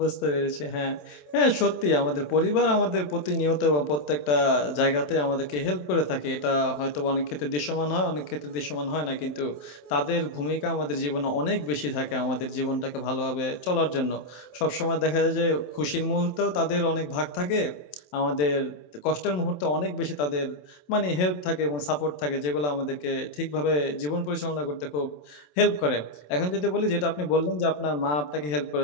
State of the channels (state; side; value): late; right; 27 ms